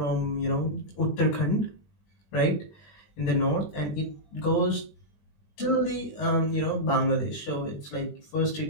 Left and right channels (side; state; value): right; late; 20 ms